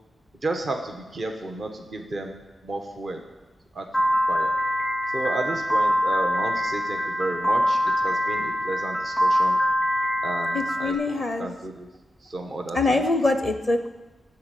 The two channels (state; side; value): normal; both; correlation 0.91